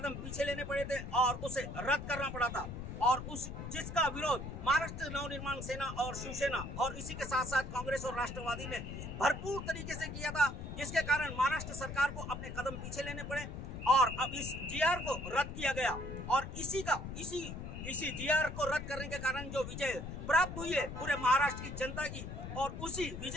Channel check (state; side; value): noise; left; rumble, 8 dB below the sound